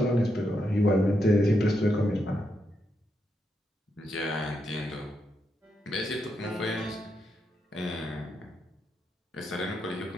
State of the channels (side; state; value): both; normal; correlation 0.82